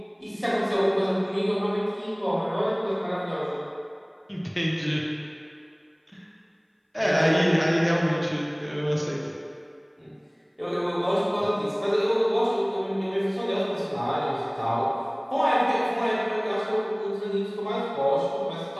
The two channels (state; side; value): identical; both; correlation 1.00